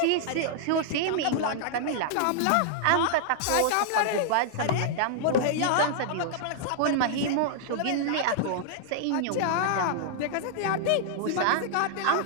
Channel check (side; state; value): both; different; correlation -0.01